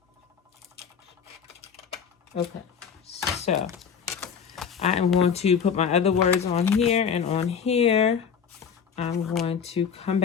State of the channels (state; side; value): quieter; right; 7.0 dB